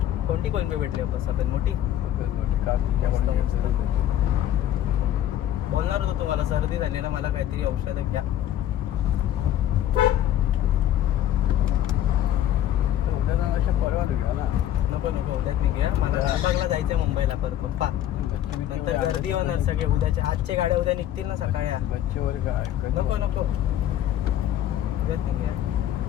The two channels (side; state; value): right; quieter; 11.8 dB